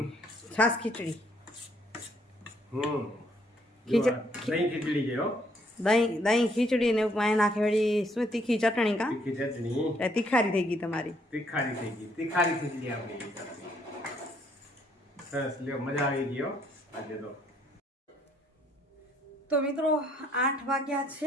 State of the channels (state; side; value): normal; both; correlation 0.68